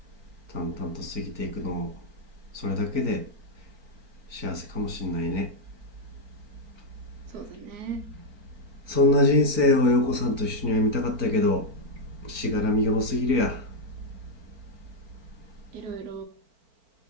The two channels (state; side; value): late; left; 4.4 ms